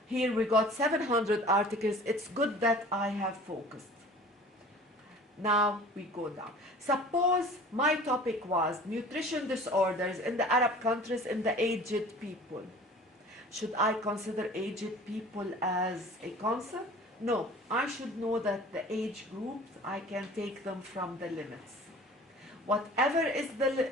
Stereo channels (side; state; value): both; normal; correlation 0.44